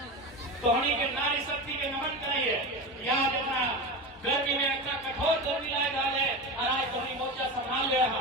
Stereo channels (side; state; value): both; normal; correlation 0.23